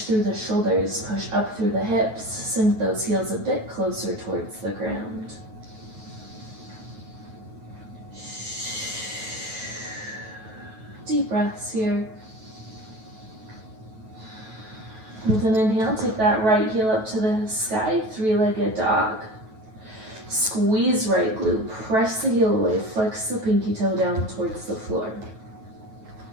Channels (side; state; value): left; late; 9.2 ms